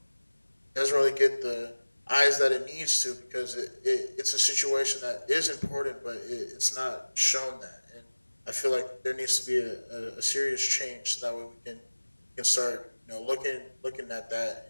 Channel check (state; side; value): inverted; both; correlation -1.00